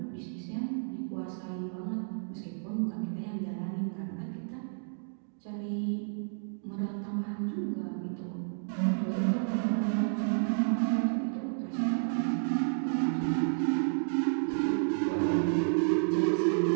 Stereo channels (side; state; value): left; silent; digital silence